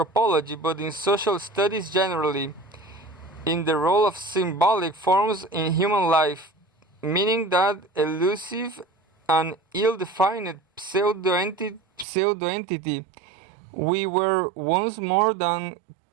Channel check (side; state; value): left; drops out; at 12.1 s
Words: but in social studies generally. in the role of symbolic forms in human life, meaning that elusive and ill-defined pseudo-entity we were once more than